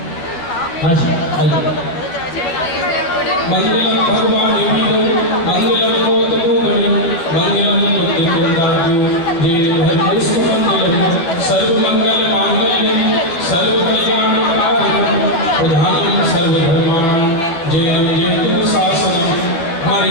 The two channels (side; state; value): right; late; 12 ms